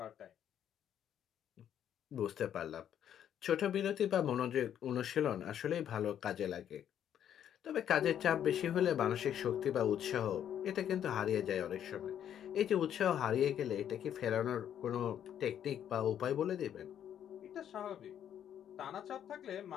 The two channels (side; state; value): right; quieter; 9.8 dB